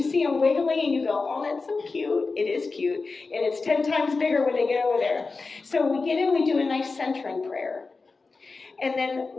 see them wiggly and you go, oh, that's so cute, it is cute, and it's 10 times bigger when they get over there. So we get in, we do a nice centering prayer. And then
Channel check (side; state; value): right; quieter; 4.1 dB